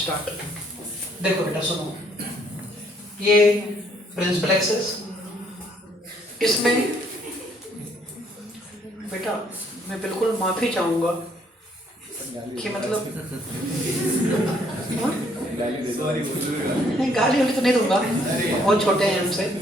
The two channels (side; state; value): both; normal; correlation 0.66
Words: देखो बेटा सुनो, ये प्रिंसिपल एक्सिस, इसमें बेटा मैं बिल्कुल माफी चाहूंगा कि मतलब नहीं, गाली वाली तो नहीं दूंगा, बहुत छोटे हैं हमसे,